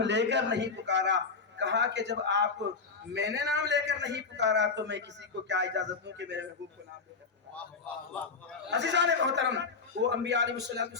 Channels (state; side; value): quieter; right; 4.8 dB